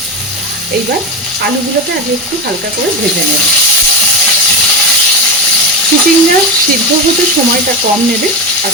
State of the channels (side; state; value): both; normal; correlation 0.17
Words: এইবার আলুগুলোকে আগে একটু হালকা করে ভেজে নেব। চিচিঙ্গা সিদ্ধ হতে সময়টা কম নেবে, আর